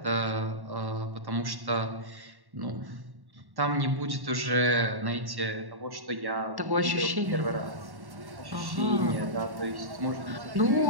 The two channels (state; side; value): late; left; 1.1 ms